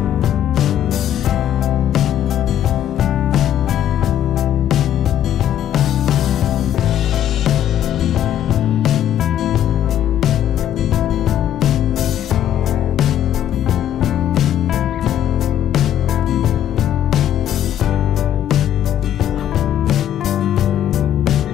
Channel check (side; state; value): right; quieter; 10.9 dB